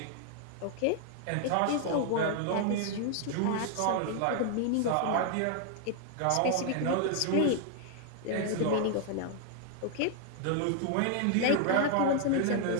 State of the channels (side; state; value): both; different; correlation 0.00